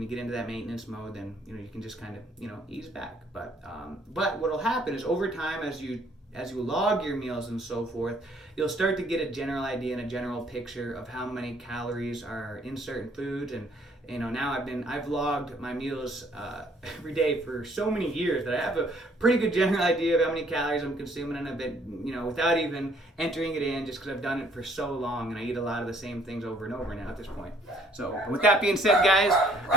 you get into that maintenance mode. Then you can just kind of ease back. But what will happen is over time, as you log your meals and so forth, you'll start to get a general idea and a general picture of how many calories are in certain foods. And now I've logged my meals every day for so many years that I have a pretty good general idea of how many calories I'm consuming, and I've been without even entering it in, just because I've done it for so long, and I eat a lot of the same things over and over now at this point. So with that being said, guys,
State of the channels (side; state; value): both; normal; correlation 0.61